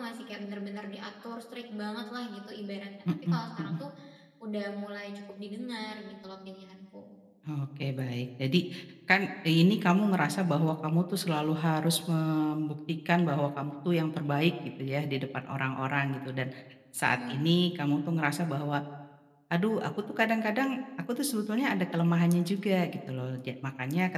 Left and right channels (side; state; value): both; identical; correlation 1.00